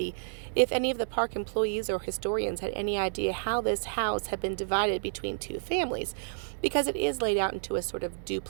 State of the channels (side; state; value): left; silent; digital silence